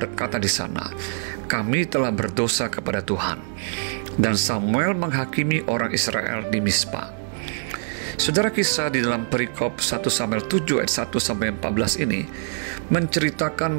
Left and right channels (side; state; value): left; silent; digital silence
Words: di sana, "Kami telah berdosa kepada Tuhan." Dan Samuel menghakimi orang Israel di Mispa. Saudara, kisah di dalam perikop 1 Samuel 7 ayat 1 sampai 14 ini